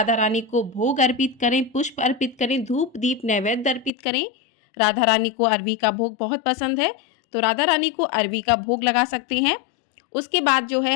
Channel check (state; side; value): drops out; right; at 3.9 s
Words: रानी को भोग अर्पित करें, पुष्प अर्पित करें, धूप दीप नैवेद्य अर्पित करें। राधा रानी को अरबी का भोग बहुत पसंद है, तो राधा रानी को अरबी का भोग लगा सकते हैं। उसके बाद जो है